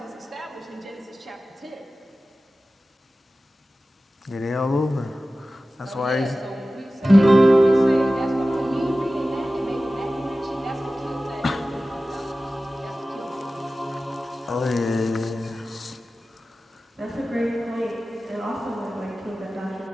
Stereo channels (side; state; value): both; normal; correlation 0.95